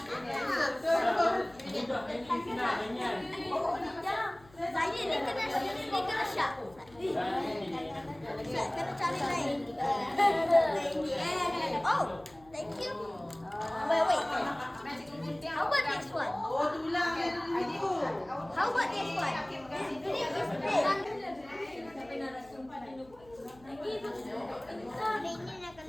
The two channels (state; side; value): noise; left; hum, 25 dB below the sound